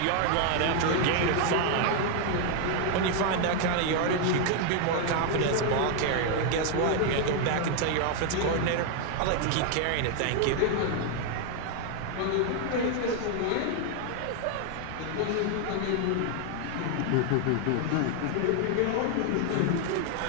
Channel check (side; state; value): both; different; correlation 0.00